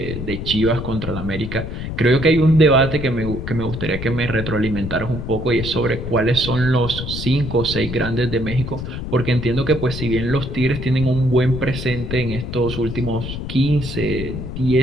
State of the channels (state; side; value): noise; left; rumble, 6 dB below the sound